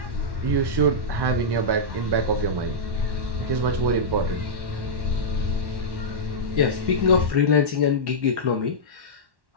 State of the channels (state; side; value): late; left; 1.1 ms